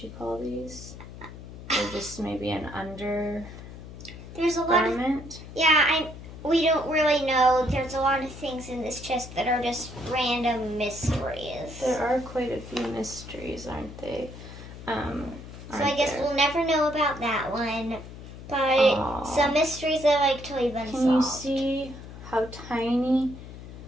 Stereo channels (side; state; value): left; noise; hum, 14 dB below the sound